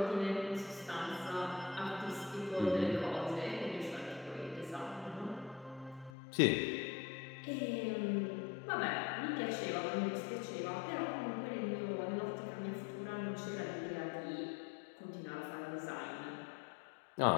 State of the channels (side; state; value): right; drops out; at 6.1 s